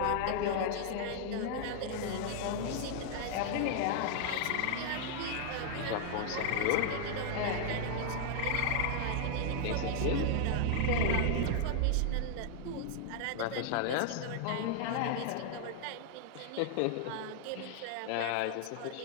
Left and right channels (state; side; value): different; both; correlation 0.00